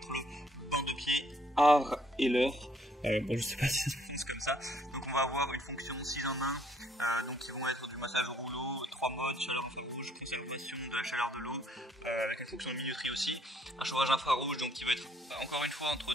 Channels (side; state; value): both; normal; correlation 0.66